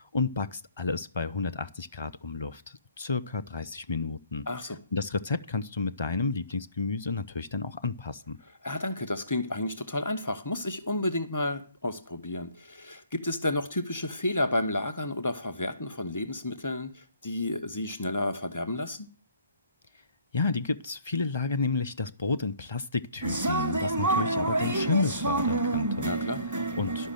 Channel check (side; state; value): both; inverted; correlation -0.58